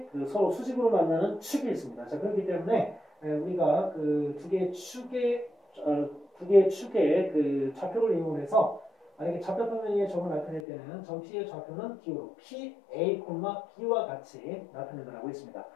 그 서로 수직으로 만나는 축이 있습니다. 자, 그렇기 때문에 우리가 그 두 개의 축의 그 좌표를 이용해서 만약에 좌표 평면의 점을 나타낼 때는 점 P의 좌표는 기호로 P, A, B와 같이 나타낸다고 했습니다.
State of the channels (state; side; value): drops out; right; at 10.6 s